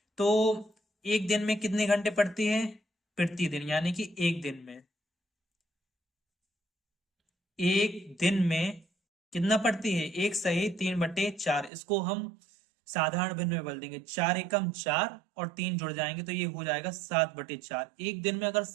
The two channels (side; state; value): left; drops out; at 11.7 s